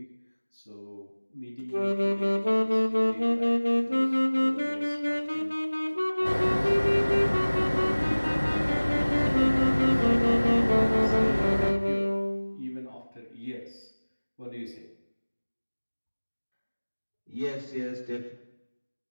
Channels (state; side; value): inverted; both; correlation -1.00